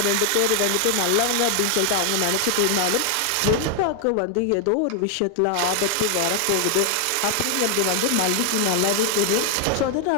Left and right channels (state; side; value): different; both; correlation 0.00